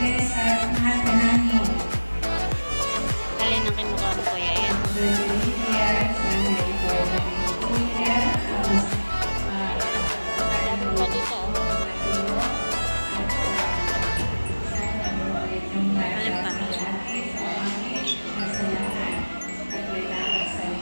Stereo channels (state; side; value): inverted; both; correlation -1.00